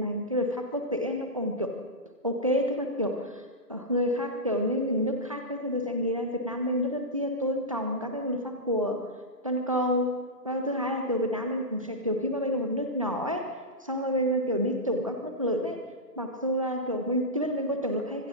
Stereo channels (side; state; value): both; normal; correlation -0.09